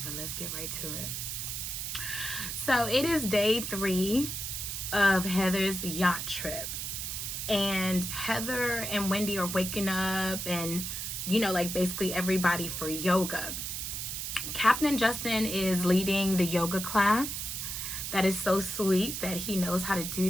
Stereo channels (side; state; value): right; noise; hiss, 4 dB below the sound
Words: Let's get right to it. So it is day 3 of Heather's yacht trip. And Heather and Wendy are waking up and, like basically everybody for yoga. Captain Justin is leading the yoga class. That is so sweet that he knows how to do